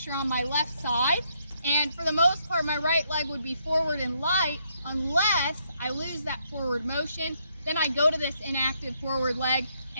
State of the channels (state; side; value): inverted; both; correlation -0.74